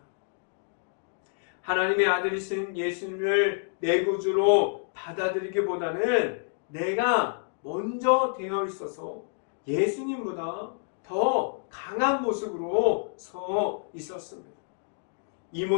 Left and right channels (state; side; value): silent; right; digital silence